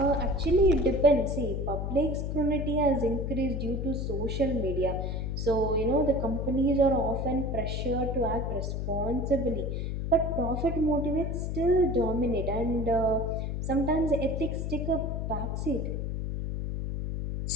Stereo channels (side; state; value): left; noise; hum, 2 dB below the sound